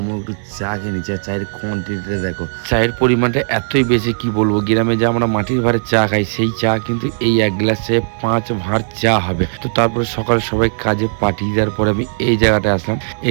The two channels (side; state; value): left; silent; digital silence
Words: একটু চা খেয়ে নিচ্ছি। আর চায়ের কোয়ান্টিটিটা দেখো, চায়ের পরিমাণটা এতই বেশি কি বলবো। গ্রামে যে আমরা মাটির ভাঁড়ের চা খাই, সেই চা কিন্তু এই এক গ্লাসে 5 ভাঁড় চা হবে। তো তারপরে সকালে সবাই কাজে পাঠিয়ে দেওয়ার পরে আমি এই জায়গাটায় আসলাম।